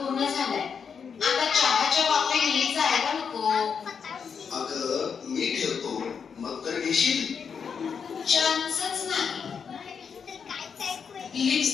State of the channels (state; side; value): quieter; right; 6.5 dB